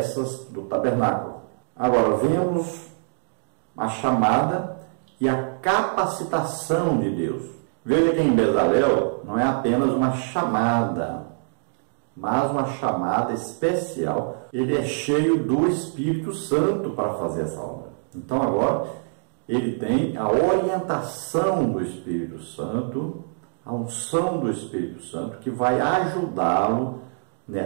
do tabernáculo. Agora vemos a chamada e a capacitação de Deus. Veja que em Bezalel não é apenas uma chamada, mas uma chamada especial. Ele é cheio do Espírito Santo para fazer essa obra. Então agora ele tem a orientação do Espírito Santo, a unção do Espírito Santo, que vai ajudá-lo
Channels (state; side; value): silent; left; digital silence